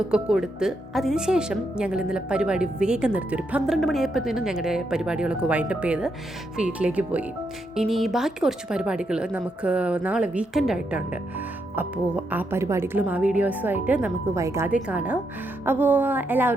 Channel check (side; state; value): both; normal; correlation 0.80